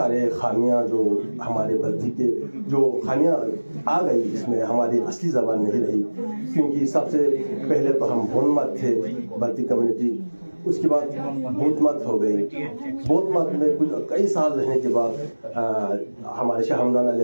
खामियां जो हमारे बल्ती के जो खामियां आ गई, इसमें हमारी असली ज़बान नहीं रही। क्योंकि सबसे पहले तो हम बोनमत थे बल्ती कम्युनिटी, उसके बाद बौद्ध मत हो गई। बौद्ध मत में कुछ कई साल रहने के बाद हमारे शाह हमदान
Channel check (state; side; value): inverted; both; correlation -1.00